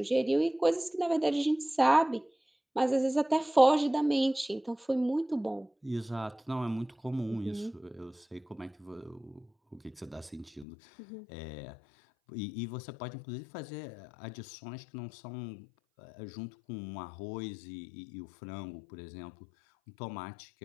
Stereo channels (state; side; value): drops out; right; at 10.7 s